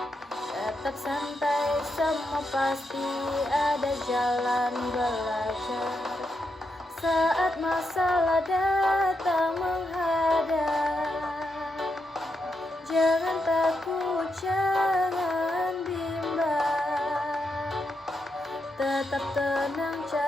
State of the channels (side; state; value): both; normal; correlation 0.83